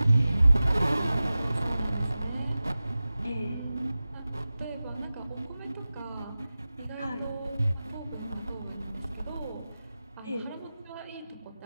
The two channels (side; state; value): both; inverted; correlation -0.96